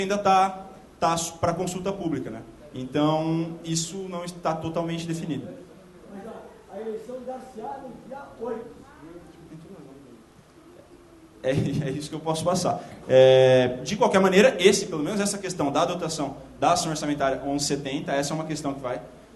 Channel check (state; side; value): identical; both; correlation 1.00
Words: está para consulta pública, né? Então, isso não está totalmente definido. Mas a eleição dar-se-á no dia 8. É isso que eu posso passar. De qualquer maneira, pelo menos essa questão da dotação da ação orçamentária 1170, essa é uma questão que vai